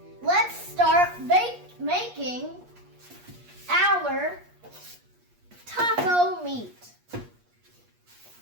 Let's start making our taco meat.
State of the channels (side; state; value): left; late; 8.4 ms